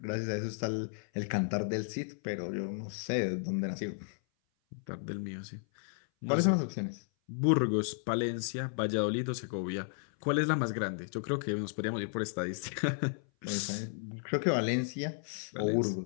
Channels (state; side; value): silent; right; 55 dB below the other